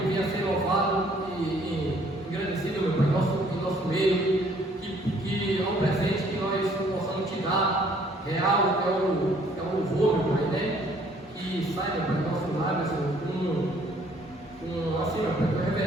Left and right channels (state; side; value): normal; both; correlation 0.61